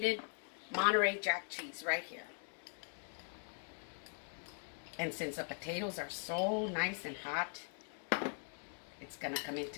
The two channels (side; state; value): right; silent; 50 dB below the other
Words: Monterey Jack cheese right here. And since the potatoes are so nice and hot, it's going to come in